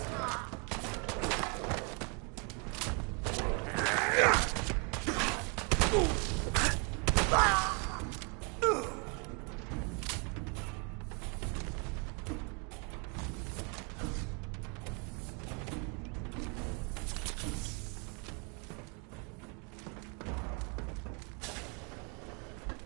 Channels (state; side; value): quieter; left; 34.6 dB